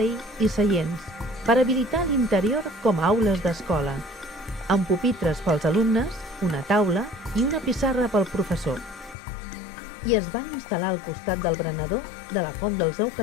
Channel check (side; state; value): right; drops out; at 9.2 s